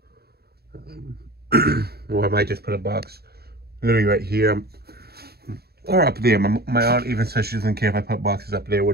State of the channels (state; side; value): late; left; 0.46 ms